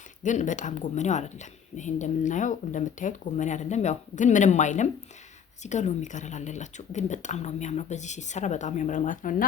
ግን በጣም ጎመኔው አይደለም። ይሄ እንደምታዩት ጎመኔ አይደለም። ያው ግን ምንም አይልም። እዚህ ጋር ሎሚ ከለር አለላችሁ፣ ግን በጣም ነው የሚያምረው። በዚህ ሲሰራ በጣም ያምራል ማለት ነው። እና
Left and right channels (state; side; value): quieter; right; 7.8 dB